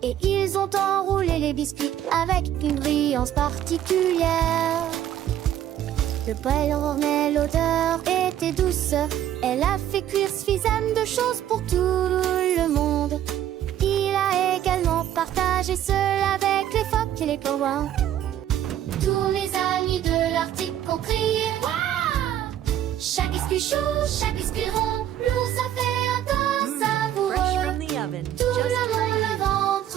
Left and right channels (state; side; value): quieter; left; 11.3 dB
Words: Et ils ont enroulé les biscuits avec une brillance particulière. Le poêle ornait, l'odeur était douce. Elle a fait cuire suffisamment de choses pour tout le monde. Il a également partagé cela avec les phoques et les pingouins. Tous mes amis de l'Arctique ont crié Waouh! Chaque biscuit chaud, chaque biscuit rond, l'ours a fait un tas savoureux. Fresh from the oven. Tout Just le for monde le you.